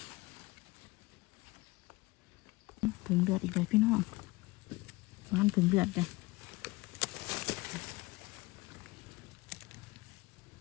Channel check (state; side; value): quieter; right; 22.0 dB